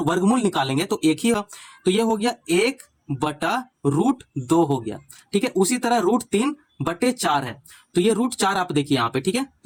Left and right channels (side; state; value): both; identical; correlation 1.00